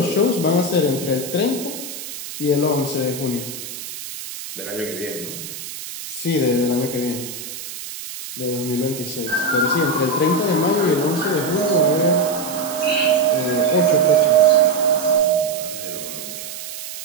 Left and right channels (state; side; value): noise; right; hiss, 10 dB below the sound